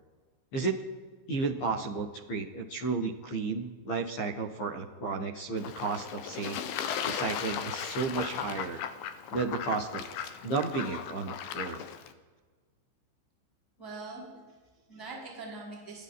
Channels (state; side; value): late; right; 15 ms